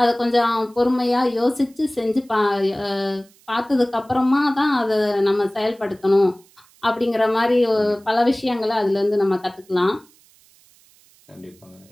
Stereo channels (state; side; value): noise; right; hiss, 30 dB below the sound